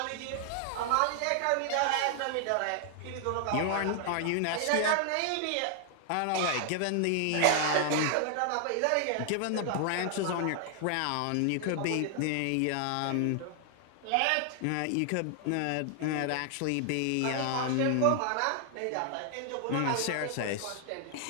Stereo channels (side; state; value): both; different; correlation 0.00